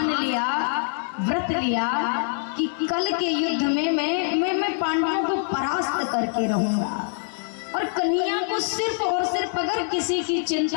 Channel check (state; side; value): silent; right; 59 dB below the other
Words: लिया, व्रत लिया कि कल के युद्ध में मैं पांडवों को परास्त करके रहूंगा, और कन्हैया को सिर्फ और सिर्फ अगर किसी की